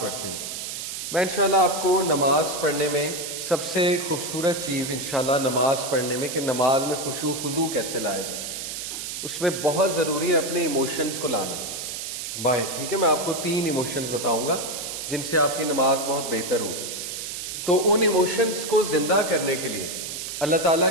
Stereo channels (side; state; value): right; noise; hiss, 6 dB below the sound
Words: پڑھتے ہیں. میں انشاءاللہ آپ کو نماز پڑھنے میں سب سے خوبصورت چیز انشاءاللہ نماز پڑھنے میں کہ نماز میں خشوع خضوع کیسے لایا جائے اس میں بہت ضروری ہے اپنے ایموشنز کو لانا باہر. ٹھیک ہے, میں آپ کو 3 ایموشنز بتاؤں گا جن سے آپ کی نماز بہت بہتر ہوگی. تو ان ایموشنز کو زندہ کرنے کے لیے اللہ تعالیٰ